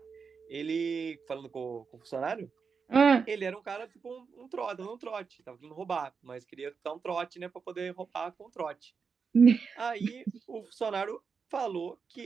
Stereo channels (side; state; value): left; quieter; 5.6 dB